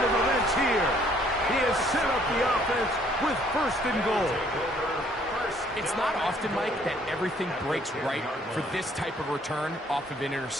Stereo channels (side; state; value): both; normal; correlation 0.62